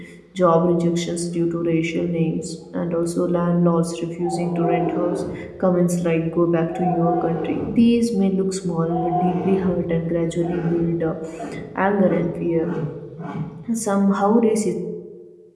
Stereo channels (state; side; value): identical; both; correlation 1.00